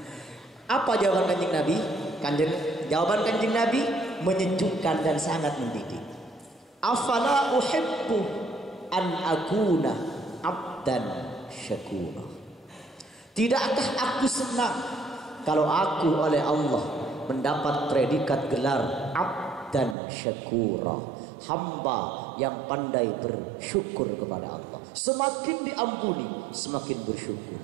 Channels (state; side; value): drops out; left; at 20.0 s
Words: Apa jawaban Kanjeng Nabi? Jawaban Kanjeng Nabi menyejukkan dan sangat mendidik. Afala uhibbu an akuna abdan syakura. Tidakkah aku senang kalau aku oleh Allah mendapat predikat gelar abdan syakura, hamba yang pandai bersyukur kepada Allah. Semakin diampuni, semakin bersyukur.